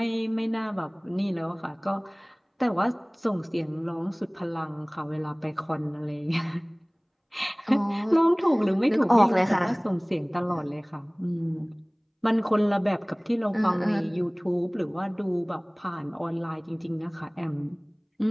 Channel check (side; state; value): both; identical; correlation 1.00